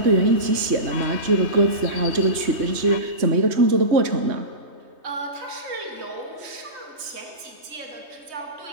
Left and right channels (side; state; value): left; late; 3.2 ms